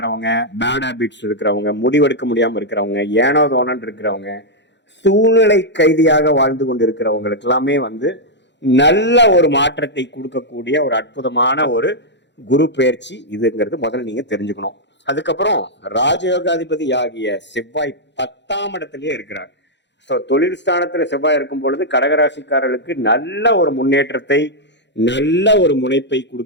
பேட் ஹேபிட்ஸ் இருக்கிறவங்க, முடிவெடுக்க முடியாம இருக்கிறவங்க, ஏனோ தோணன் இருக்கிறவங்க, சூழ்நிலை கைதியாக வாழ்ந்து கொண்டு இருக்கிறவங்களுக்கு எல்லாமே நல்ல ஒரு மாற்றத்தை கொடுக்கக்கூடிய ஒரு அற்புதமான ஒரு குரு பயிற்சி இதுங்கிறது முதல்ல நீங்க தெரிஞ்சுக்கணும். அதுக்கப்புறம் ராஜயோகாதிபதி ஆகிய செவ்வாய் 10ஆம் இடத்திலேயே இருக்கிறார். ஸோ தொழில் ஸ்தானத்துல செவ்வாய் இருக்கும் பொழுது கடகராசிக்காரர்களுக்கு நல்ல ஒரு முன்னேற்றத்தை, நல்ல ஒரு முனைப்பை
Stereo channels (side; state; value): right; late; 0.52 ms